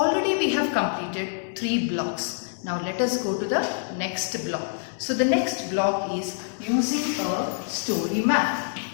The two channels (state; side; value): silent; right; 61 dB below the other